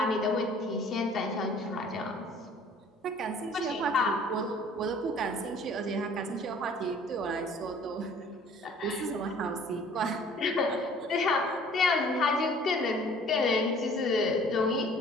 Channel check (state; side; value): normal; both; correlation 0.52